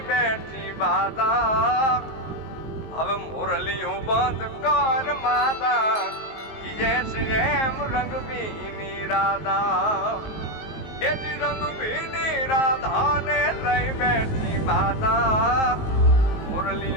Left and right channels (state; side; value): late; right; 19 ms